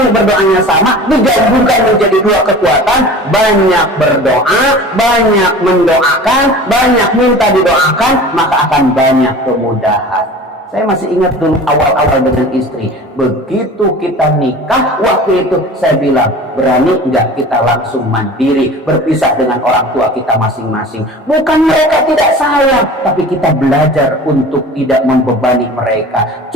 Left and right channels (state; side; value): normal; both; correlation 0.39